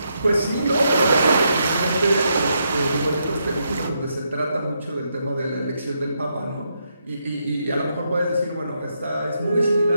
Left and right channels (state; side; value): inverted; both; correlation -0.80